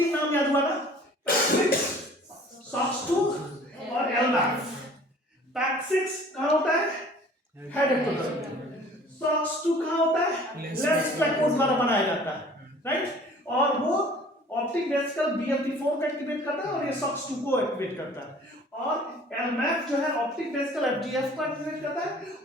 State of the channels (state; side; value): normal; both; correlation 0.50